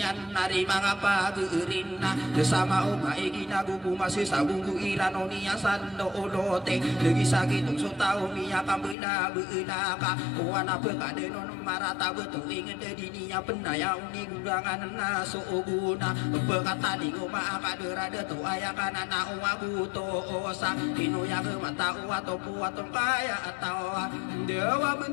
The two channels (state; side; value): drops out; right; at 9.0 s